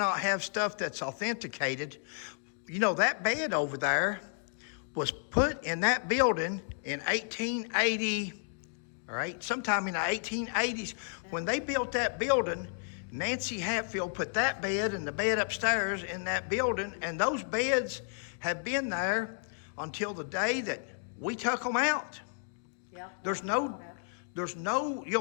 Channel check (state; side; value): silent; right; digital silence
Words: have stuff that's authenticated? You know, that bed over there was put in that building in 1880, right? Sometime in the 1880s. When they built that building, Nancy Hatfield put that bed and the bed upstairs in that building, and those beds have been there until the day that we took them out. Yep.